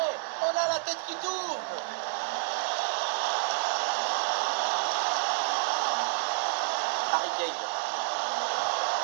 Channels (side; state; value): left; silent; digital silence